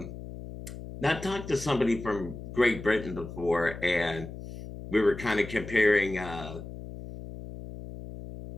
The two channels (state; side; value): noise; left; hum, 11 dB below the sound